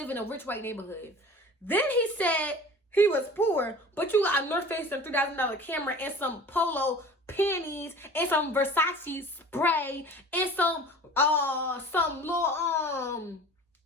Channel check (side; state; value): both; normal; correlation 0.41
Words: in a rich white neighborhood. Then he said he was poor, but you got a North Face and $3,000 camera and some polo panties and some Versace spray and some little